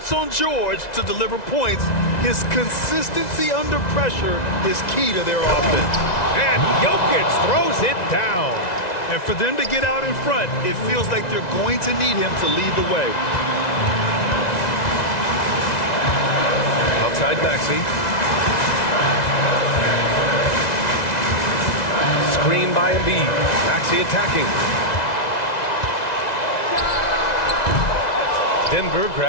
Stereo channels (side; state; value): right; late; 2.0 ms